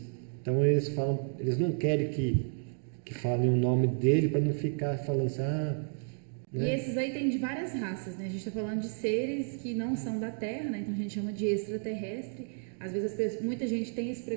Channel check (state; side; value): silent; left; 57 dB below the other